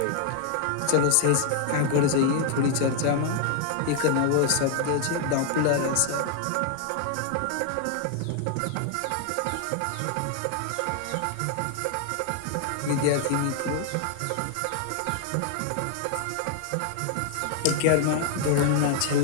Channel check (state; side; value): different; both; correlation 0.00